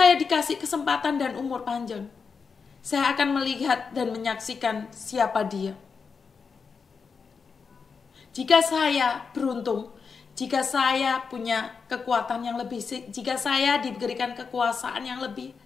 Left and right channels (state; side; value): quieter; right; 5.4 dB